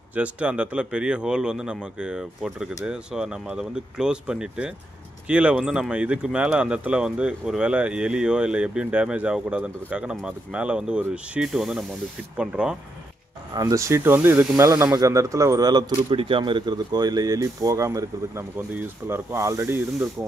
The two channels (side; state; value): both; normal; correlation 0.80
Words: ஜஸ்ட்டு அந்த இடத்துல பெரிய ஹோல் வந்து நமக்கு போட்டிருக்குது. ஸோ நம்ம அதை வந்து க்ளோஸ் பண்ணிவிட்டு கீழே வந்து நம்ம இதுக்கு மேலே அந்த இடத்துல வந்து ஒரு வேளை எலியோ இல்லை எப்படியும் டேமேஜ் ஆகக்கூடாதுன்றதுக்காக நம்ம அதுக்கு மேலே வந்து ஒரு ஷீட்டு வந்து நம்ம வந்து ஃபிட் பண்ணுறோம். அந்த ஷீட் வந்து இதுக்கு மேலே நமக்கு அந்த இடத்துல ஒரு வேளை துருப்பிடிக்காமல் இருக்கிறதுக்கோ இல்லை எலி போகாமல் இருக்கிறதுக்கு நமக்கு வந்து யூஸ்ஃபுல்லாக இருக்கும். ஆல்ரெடி இருந்திருக்கும்